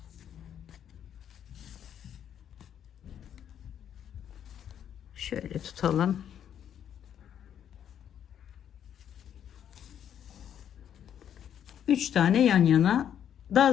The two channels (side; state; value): right; quieter; 9.4 dB